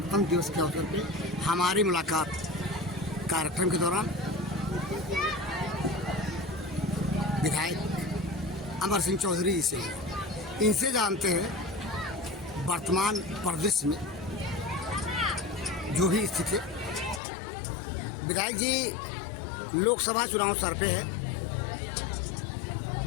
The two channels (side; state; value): right; drops out; at 17.2 s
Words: दिवस के अवसर पर हमारी मुलाकात कार्यक्रम के दौरान विधायक अमर सिंह चौधरी जी से इनसे जानते हैं वर्तमान परिदृश्य में जो भी स्थिति है। विधायक जी, लोकसभा चुनाव सर पे है